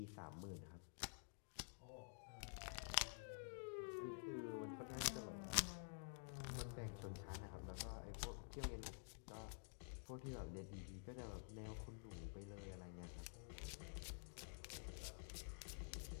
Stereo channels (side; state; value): right; silent; digital silence